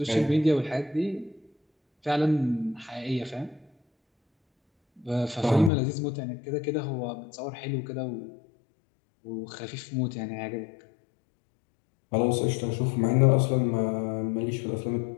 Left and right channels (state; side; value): drops out; right; at 5.7 s